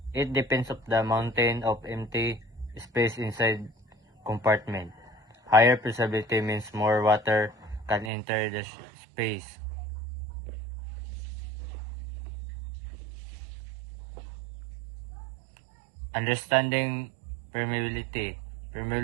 It depends on the amount of empty space inside compartment. Higher permeability means more water can enter the space. Understanding permeability.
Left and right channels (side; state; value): left; drops out; at 8.1 s